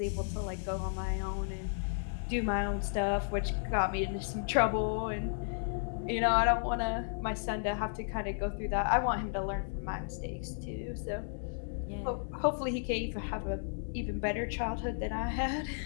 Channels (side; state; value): right; silent; digital silence